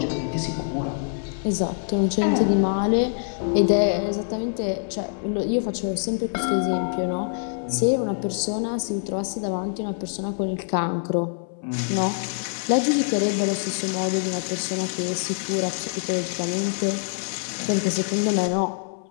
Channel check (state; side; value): silent; right; 62 dB below the other